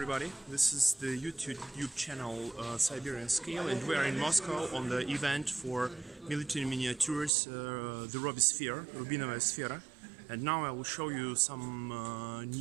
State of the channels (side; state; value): left; drops out; at 7.3 s